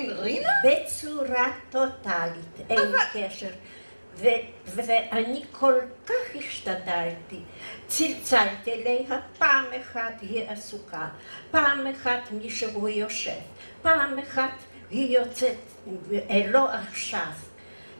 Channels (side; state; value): both; inverted; correlation -1.00